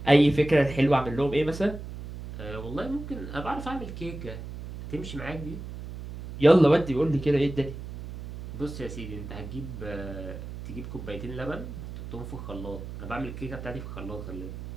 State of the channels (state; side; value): noise; right; hum, 10 dB below the sound